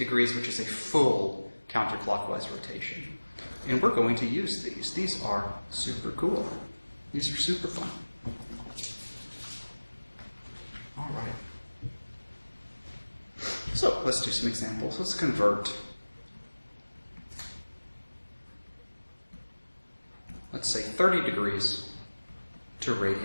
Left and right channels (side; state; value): both; inverted; correlation -1.00